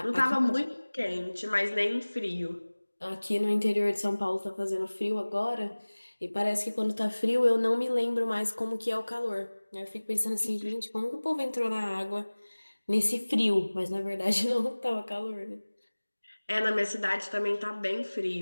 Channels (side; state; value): both; inverted; correlation -1.00